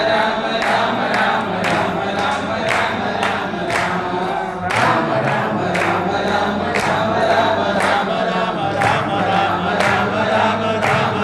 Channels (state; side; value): noise; left; rumble, 29 dB below the sound